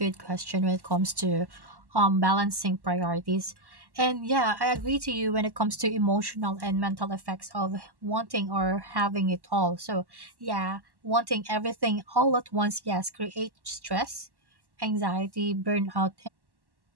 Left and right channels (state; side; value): late; left; 1.1 ms